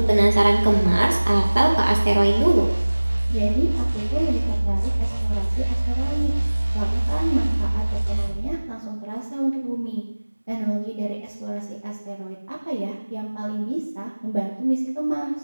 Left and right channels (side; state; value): both; inverted; correlation -1.00